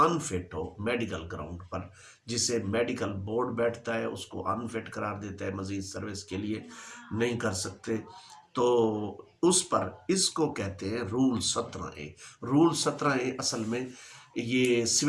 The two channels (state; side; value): identical; both; correlation 1.00